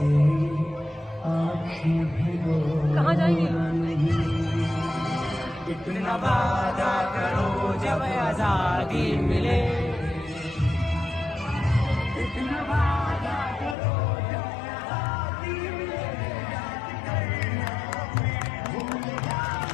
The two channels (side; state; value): right; drops out; at 13.8 s